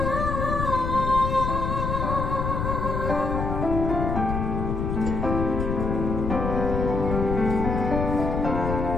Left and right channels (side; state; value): left; noise; rumble, 2 dB below the sound